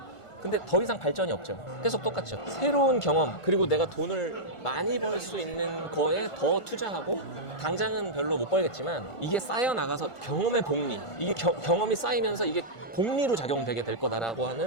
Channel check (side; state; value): right; late; 1.5 ms